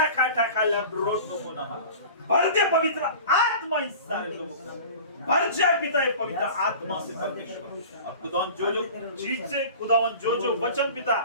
खाता खा लब्रोट नको ना भर दे पवित्र आत्मा इस सारे लोगों को भर जाए पिता ये पवित्र आत्मा से परमेश्वर. और खुदावन जो चीज से खुदावन जो वचन पिता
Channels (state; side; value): inverted; both; correlation -0.39